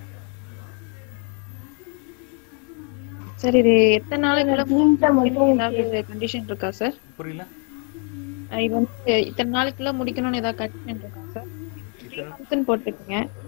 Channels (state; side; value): quieter; right; 38.9 dB